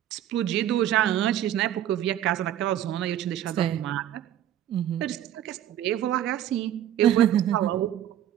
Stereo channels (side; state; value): left; quieter; 11.4 dB